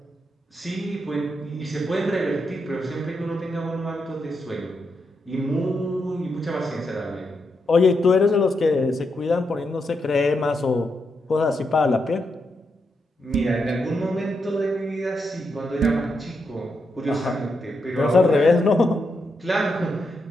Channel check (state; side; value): normal; both; correlation 0.83